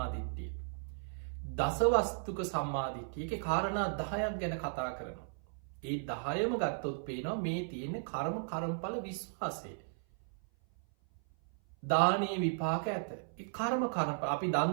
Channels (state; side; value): silent; left; 54 dB below the other